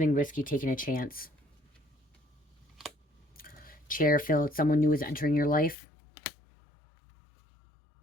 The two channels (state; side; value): drops out; right; at 5.8 s